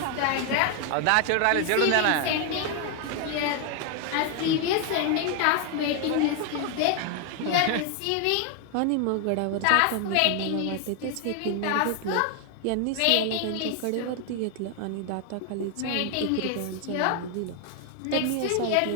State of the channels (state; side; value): different; both; correlation 0.00